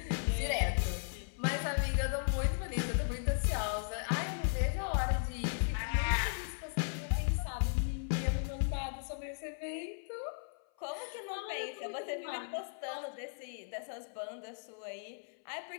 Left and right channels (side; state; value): right; silent; 53 dB below the other